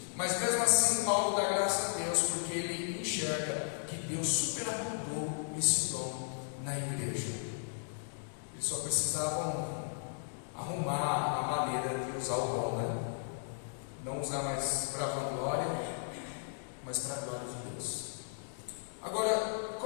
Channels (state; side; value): silent; right; digital silence